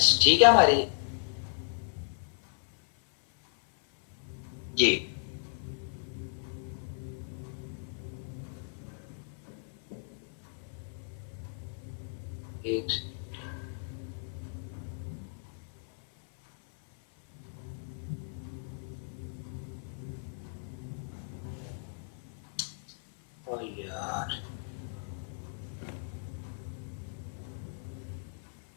ठीक है हमारी। जी एक यार,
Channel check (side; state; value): right; silent; 55 dB below the other